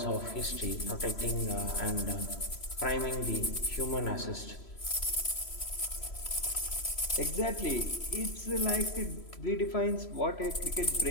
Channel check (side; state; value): right; late; 3.0 ms